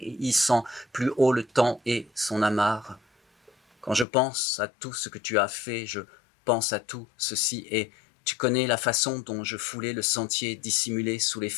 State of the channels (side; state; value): right; drops out; at 4.0 s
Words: hissant plus haut le temps et son amarre. Quand je pense à tout ce que tu as fait, je pense à tout ceci et tu connais la façon dont je foulais le sentier dissimulé sous les